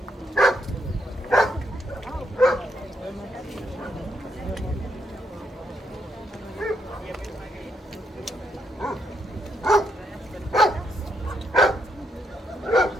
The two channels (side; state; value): both; normal; correlation 0.77